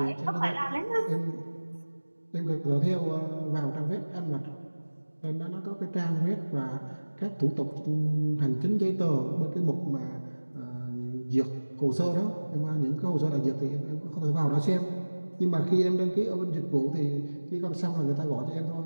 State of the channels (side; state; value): both; inverted; correlation -1.00